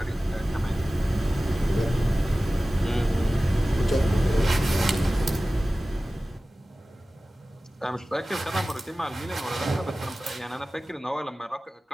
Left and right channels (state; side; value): normal; both; correlation 0.96